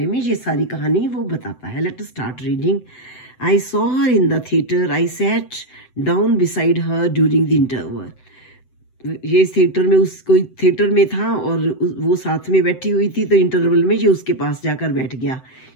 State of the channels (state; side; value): late; right; 7.9 ms